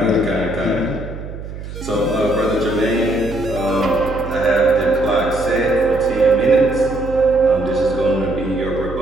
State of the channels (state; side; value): noise; right; hum, 10 dB below the sound